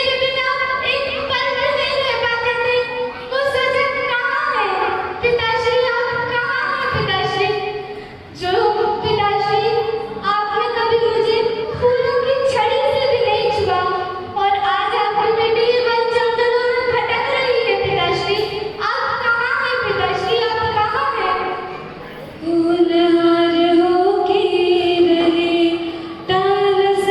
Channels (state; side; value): identical; both; correlation 1.00